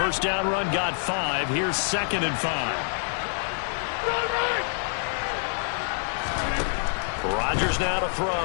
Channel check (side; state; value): right; silent; digital silence